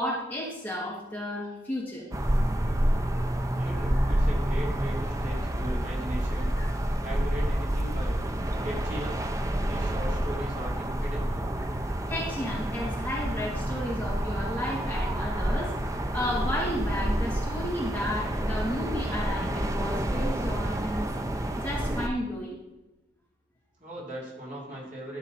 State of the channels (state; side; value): normal; both; correlation 0.84